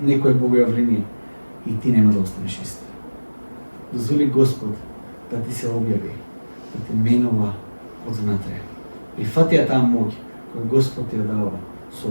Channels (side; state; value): both; inverted; correlation -1.00